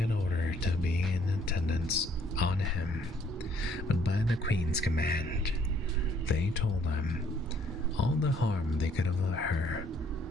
ordered to be in attendance on him, but by the queen's command, they told him all the harm they could of her,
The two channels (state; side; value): normal; both; correlation 0.64